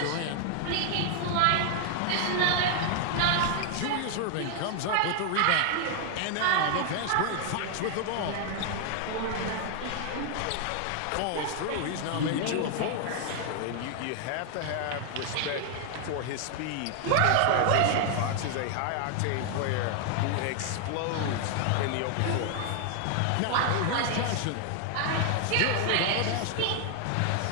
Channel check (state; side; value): different; both; correlation 0.00